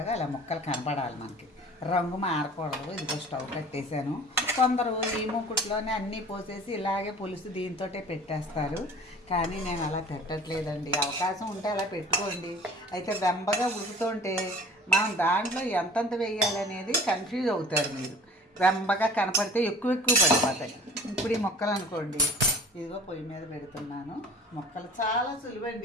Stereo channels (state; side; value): normal; both; correlation 0.45